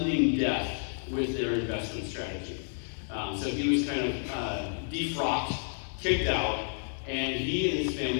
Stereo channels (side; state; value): right; silent; 58 dB below the other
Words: death with their investment strategy. So he was kind of defrocked, kicked out, and he and his